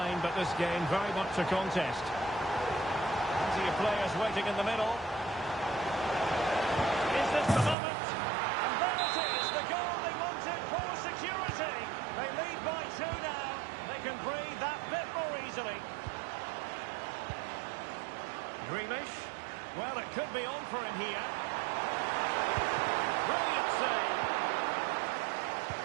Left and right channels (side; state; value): left; drops out; at 7.8 s